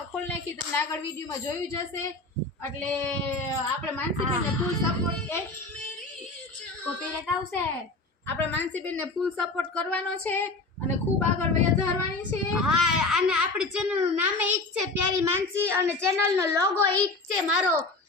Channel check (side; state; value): right; quieter; 3.2 dB